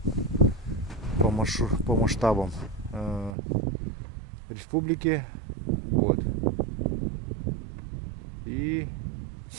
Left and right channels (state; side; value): drops out; left; at 3.4 s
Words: по масштабам республики. Вот. И